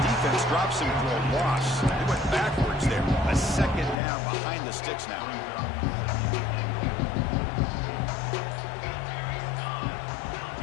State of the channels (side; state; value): right; drops out; at 4.0 s